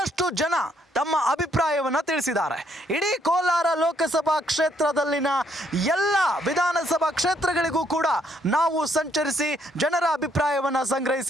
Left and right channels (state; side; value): normal; both; correlation 0.71